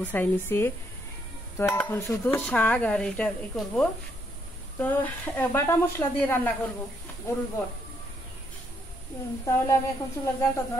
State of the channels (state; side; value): normal; both; correlation 0.73